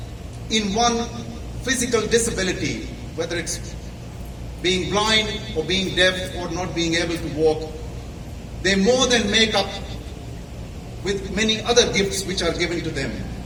in one physical disability, whether it's being blind or being deaf or not being able to walk, they more than make up with many other gifts which are given to them.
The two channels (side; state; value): both; identical; correlation 1.00